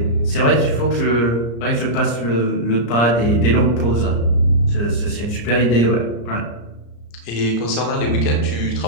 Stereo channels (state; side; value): late; right; 34 ms